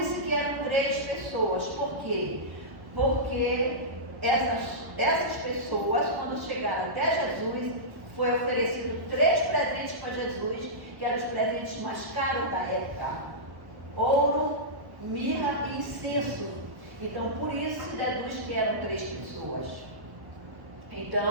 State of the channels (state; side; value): late; left; 1.3 ms